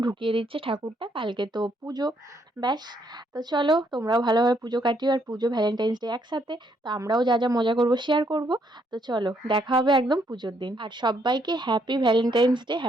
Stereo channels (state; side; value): normal; both; correlation 0.72